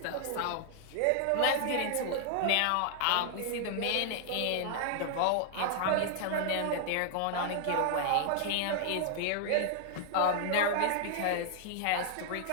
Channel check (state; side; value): different; both; correlation 0.00